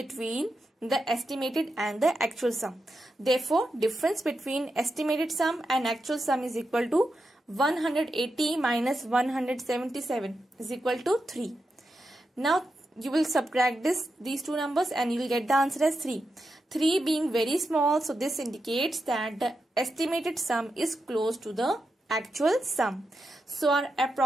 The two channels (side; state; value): both; normal; correlation 0.87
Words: the estimated and the actual sum. Therefore, difference between estimated sum and actual sum is equal to 180 minus 177 is equal to 3. Now you will subtract these two numbers and you will get the answer as 3. 3 being very small, so this indicates that the estimated sum is close to the actual sum. So our